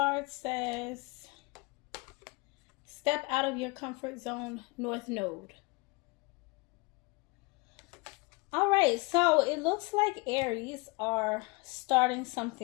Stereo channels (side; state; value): right; quieter; 27.4 dB